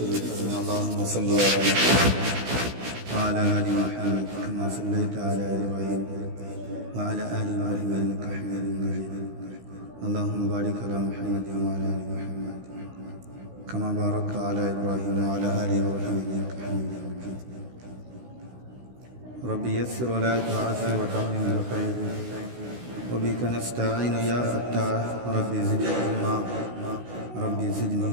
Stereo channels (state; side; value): late; left; 16 ms